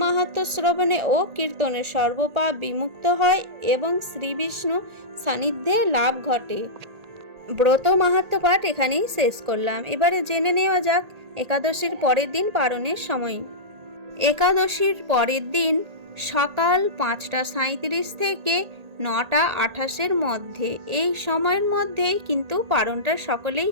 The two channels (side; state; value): left; late; 1.8 ms